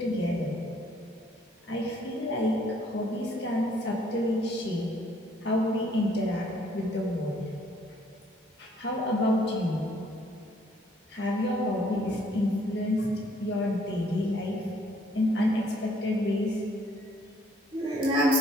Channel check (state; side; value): normal; both; correlation 0.64